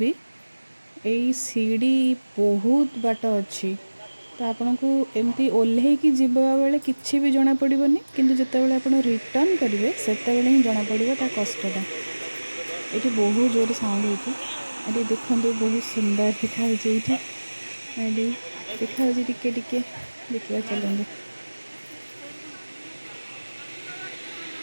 एई सीढ़ी बहुत बाट अच्छी। तो आपन को एमती ओल्हे की जीवा बेले किछि भी जना पड़िबनी, किंतु जते बेले आपन रिटर्न करिवे सेते बेले ही जना पड़िबो ता कष्टटा। एठी बहुत जोर साउंड होची। एठी देखंतु बहुत सुंदर देखा होची। एठी देखा होची टिके टिके देखिबा चलंदु।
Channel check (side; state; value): both; inverted; correlation -1.00